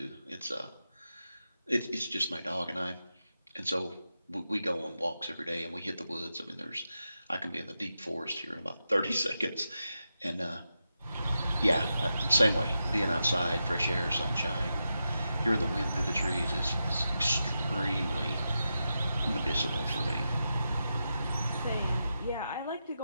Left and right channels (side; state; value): both; inverted; correlation -0.88